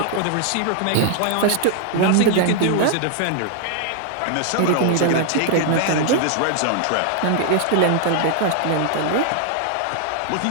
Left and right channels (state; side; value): different; both; correlation 0.00